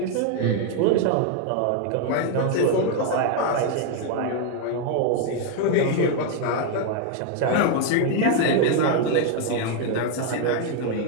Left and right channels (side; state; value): both; different; correlation 0.00